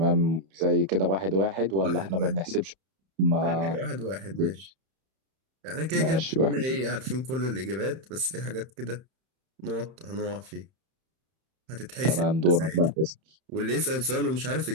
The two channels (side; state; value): left; late; 31 ms